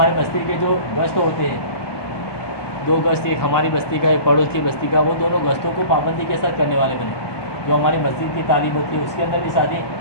بستی کے جو گشت ہوتے ہیں، 2 گشت، ایک ہماری بستی کا ایک پڑوس کی بستی کا، وہ دونوں گشتوں کو پابندی کے ساتھ کرنے والے بنے۔ جو ہماری مسجد کی تعلیم ہوتی ہے اس کے اندر بھی ساتھی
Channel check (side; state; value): right; late; 1.2 ms